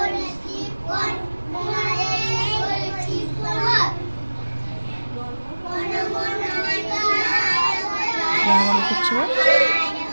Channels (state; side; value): inverted; both; correlation -1.00